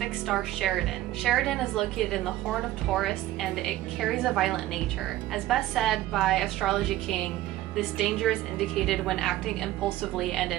star Sheridan. Sheridan is located in the Horn of Taurus and it carries a violent nature. As best said by Astrology King, this danger is indicated when acting impulsively and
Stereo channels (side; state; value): left; quieter; 15.1 dB